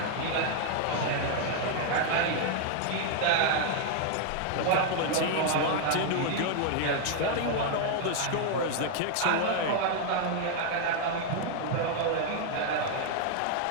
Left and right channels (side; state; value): both; different; correlation 0.00